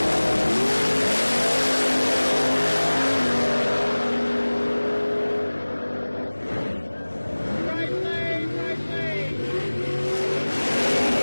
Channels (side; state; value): both; inverted; correlation -1.00